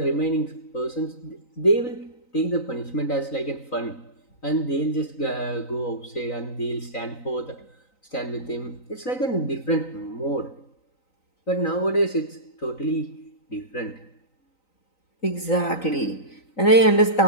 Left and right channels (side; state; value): right; late; 3.9 ms